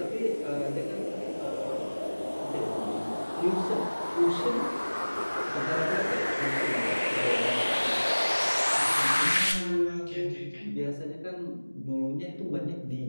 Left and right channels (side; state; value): both; inverted; correlation -1.00